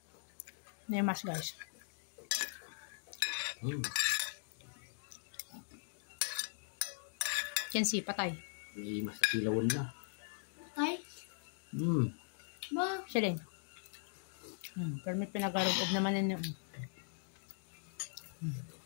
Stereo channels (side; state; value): right; silent; digital silence